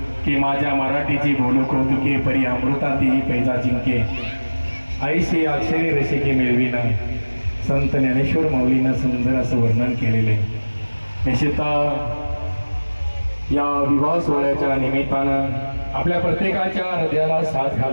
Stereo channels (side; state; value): both; inverted; correlation -1.00